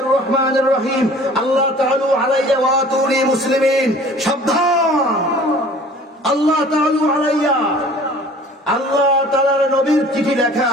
রহমানির রহিম। আল্লাহ তাআলা আলাইয়া ওয়া আতুনি মুসলিমিন। সাবধান, আল্লাহ তাআলা আলাইয়া, আল্লাহ তাআলার নবীর চিঠি লেখা,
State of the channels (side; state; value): both; normal; correlation 0.48